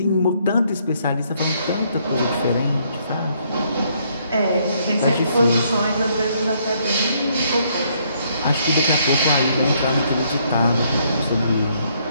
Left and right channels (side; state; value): both; inverted; correlation -0.70